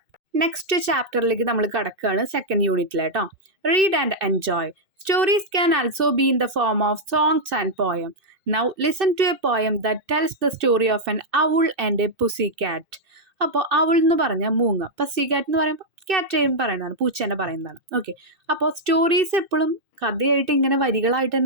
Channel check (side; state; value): left; late; 2.6 ms